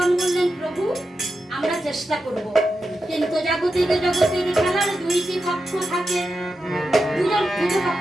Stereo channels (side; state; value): both; normal; correlation 0.89